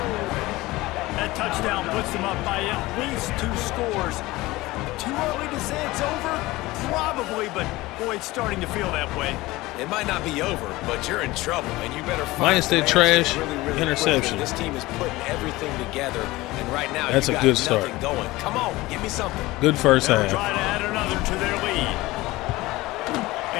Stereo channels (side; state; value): right; quieter; 19.5 dB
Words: That touchdown puts them up by at least 2 scores. Too early to say it's over? Probably, but boy, it's starting to feel that way. It might not be over, but you're in trouble, and you better find Minus that trash interception. This team is putting everything together, and right now that's a good start. Going. Come on, give me something. Good first half. Try to add another to their lead.